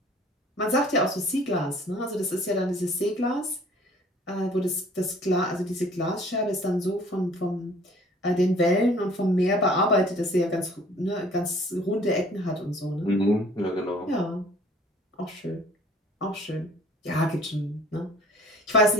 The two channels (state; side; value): normal; both; correlation 0.53